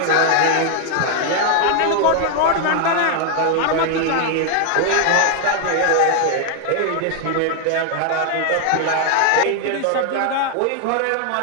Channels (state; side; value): different; both; correlation 0.00